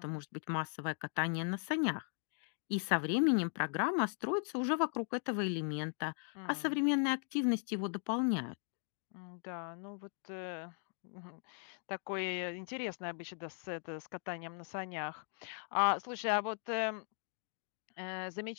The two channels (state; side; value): silent; right; 52 dB below the other